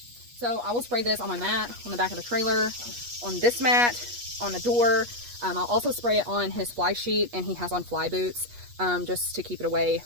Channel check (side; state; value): left; late; 8.3 ms